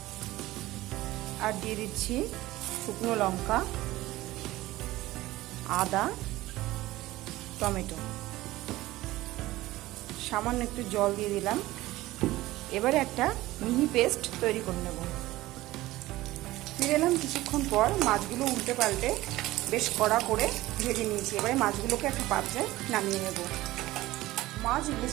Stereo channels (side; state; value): left; quieter; 17.4 dB